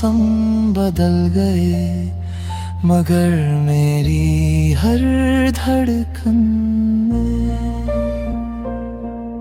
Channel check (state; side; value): identical; both; correlation 1.00